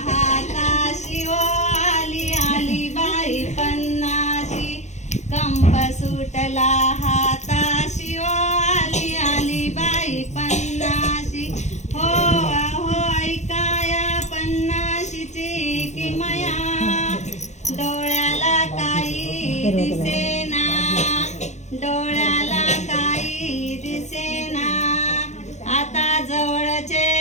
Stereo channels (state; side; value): late; right; 0.33 ms